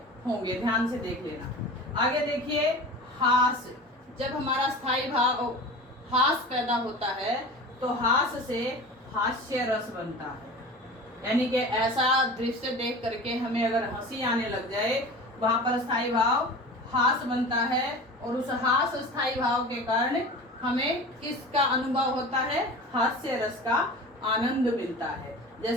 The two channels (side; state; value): both; normal; correlation 0.35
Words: होंगे, ध्यान से देख लेना। आगे देखिए हास। जब हमारा स्थायी भाव हास पैदा होता है तो हास से हास्य रस बनता है, यानी कि ऐसा दृश्य देख करके हमें अगर हंसी आने लग जाए वहां पर स्थायी भाव हास बनता है। और उस हास स्थायी भाव के कारण हमें किसका अनुभव होता है? हास्य रस का आनंद मिलता है।